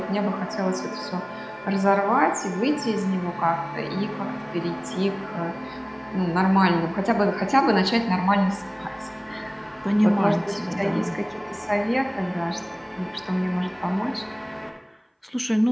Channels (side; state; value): both; identical; correlation 1.00